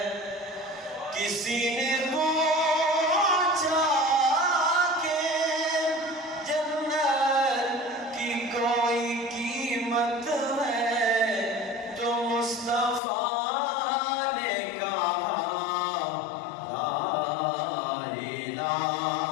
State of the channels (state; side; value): drops out; right; at 13.0 s